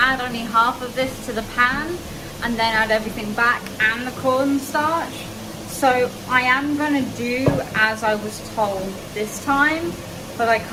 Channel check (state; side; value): identical; both; correlation 1.00